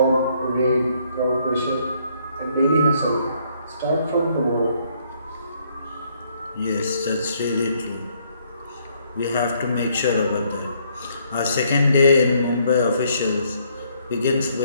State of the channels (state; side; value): inverted; both; correlation -0.69